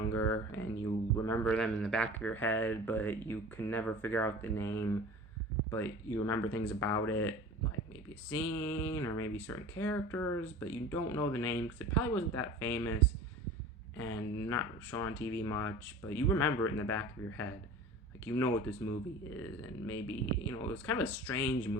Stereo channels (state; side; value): normal; both; correlation 0.39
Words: and you remember them in the back of your head, but you can never figure out the name, but you remember things about it, like maybe a scene or maybe certain characters, but you don't know the name because it probably wasn't that famous and not shown on TV much, but you remember it in the back of your head. Like you know what this movie is, and maybe it was kind of a strange